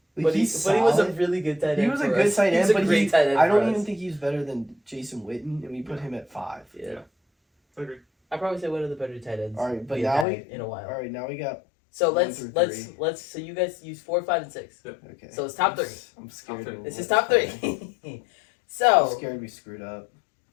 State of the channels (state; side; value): drops out; right; at 10.2 s